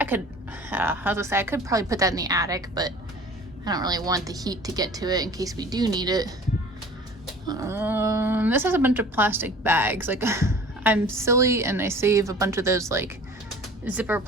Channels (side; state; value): both; normal; correlation 0.45